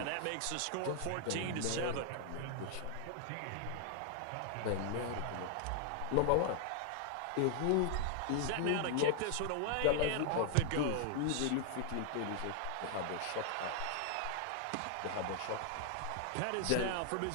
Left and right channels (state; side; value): different; both; correlation 0.00